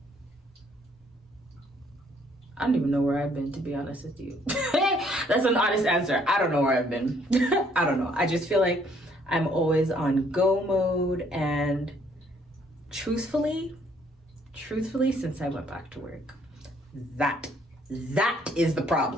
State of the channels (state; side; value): normal; both; correlation 0.65